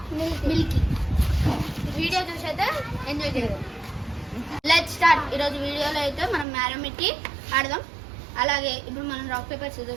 మిల్కీ. వీడియో చూసి అయితే ఎంజాయ్ చేద్దాం. Let's start. ఈరోజు వీడియోలో అయితే మనం మ్యారమిటీ ఆడదాం. అలాగే ఇప్పుడు మనం రాక్ పేపర్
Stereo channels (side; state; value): left; drops out; at 6.5 s